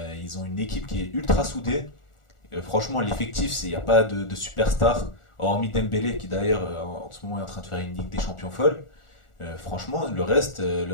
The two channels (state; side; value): late; right; 1.4 ms